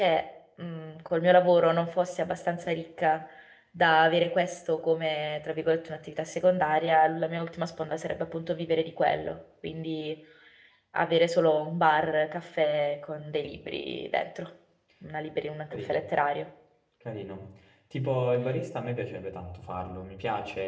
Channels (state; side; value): identical; both; correlation 1.00